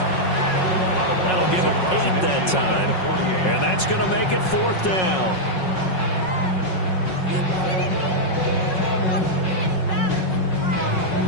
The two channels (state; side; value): late; right; 5.4 ms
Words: That'll give him 8 that time. And that's going to make it 4th down.